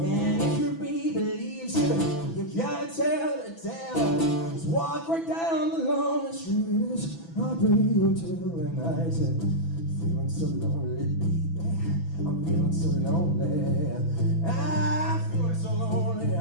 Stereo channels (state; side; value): late; right; 6.0 ms